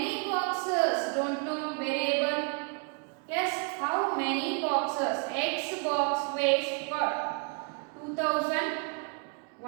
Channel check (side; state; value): left; quieter; 37.9 dB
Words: boxes? Don't know variable. Yes, how many boxes? X box weighs what?